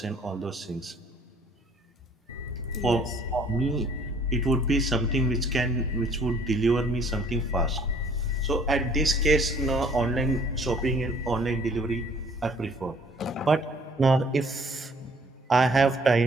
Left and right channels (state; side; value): normal; both; correlation 0.58